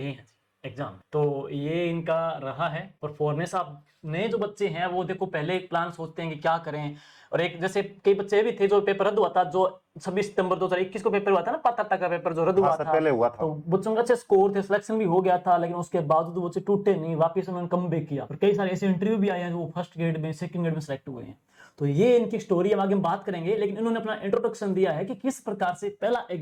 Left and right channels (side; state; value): both; identical; correlation 1.00